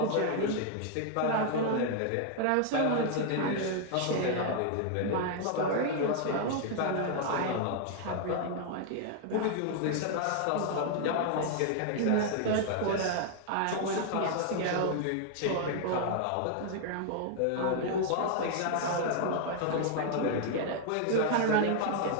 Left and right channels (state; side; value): different; both; correlation 0.00